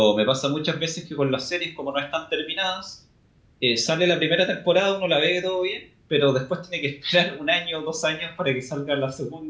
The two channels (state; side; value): identical; both; correlation 1.00